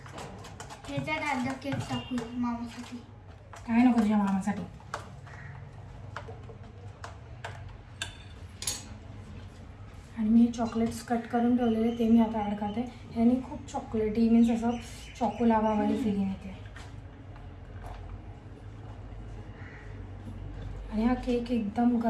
ह्याच्यात अर्धा केक टाकू मामासाठी. काय नको तुझ्या मामासाठी. आणि मी चॉकलेट्स कट करून ठेवलेले ते मी आता ॲड करते. ह्याने खूप चॉकलेटी मीन्स असं चॉकोलावावाली फिलिंग येते. आणि हा केक एकदम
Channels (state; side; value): identical; both; correlation 1.00